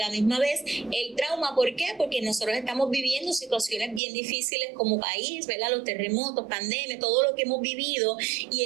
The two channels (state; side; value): drops out; left; at 4.0 s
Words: misma vez el trauma, ¿por qué? Porque nosotros estamos viviendo situaciones bien difíciles como país, ¿verdad? Los terremotos, pandemia, todo lo que hemos vivido, y